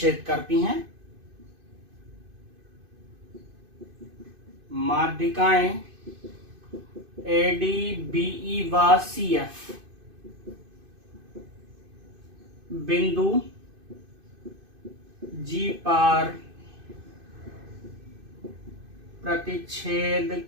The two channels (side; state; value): left; late; 2.5 ms